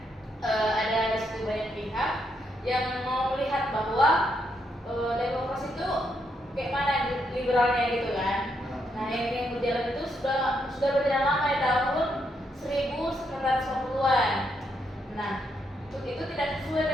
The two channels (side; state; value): both; normal; correlation 0.78